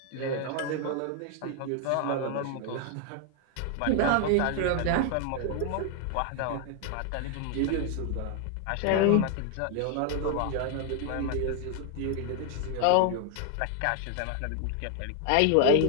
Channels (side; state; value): both; different; correlation 0.01